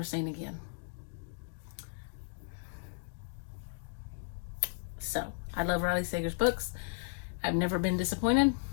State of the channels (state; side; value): silent; right; digital silence